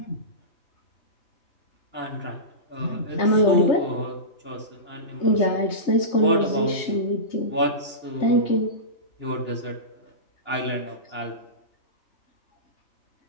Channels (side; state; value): right; late; 3.3 ms